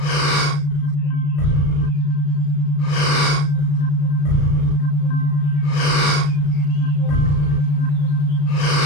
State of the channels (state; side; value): late; right; 35 ms